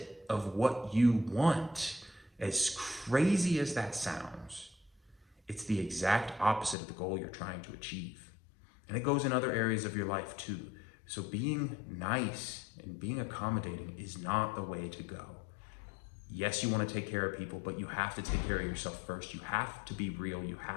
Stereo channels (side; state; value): right; drops out; at 6.8 s